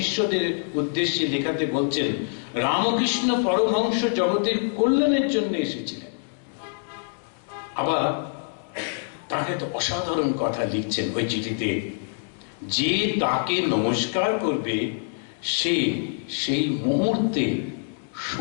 উদ্দেশ্যে লেখাতে বলছেন, রামকৃষ্ণ পরমহংস জগতের কল্যাণের জন্য এসেছিলেন। আবার তাকে তো অসাধারণ কথা লিখছেন ওই চিঠিতে, যে তাকে নমস্কার করবে সে সেই মুহূর্তে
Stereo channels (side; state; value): right; silent; 62 dB below the other